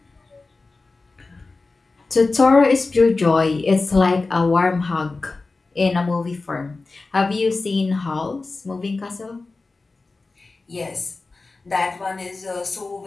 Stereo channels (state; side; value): quieter; right; 3.7 dB